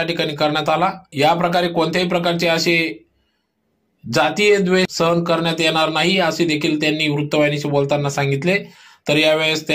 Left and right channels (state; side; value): identical; both; correlation 1.00